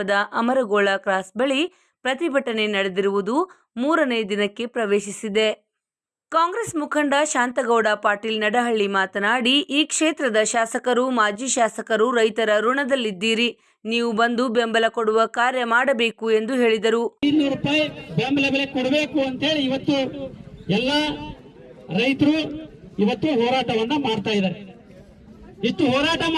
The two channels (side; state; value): both; identical; correlation 1.00